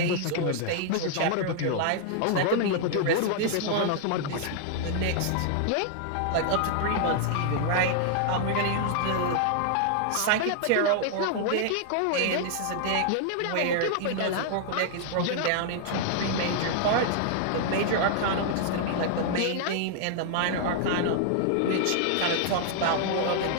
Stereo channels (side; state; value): both; different; correlation 0.00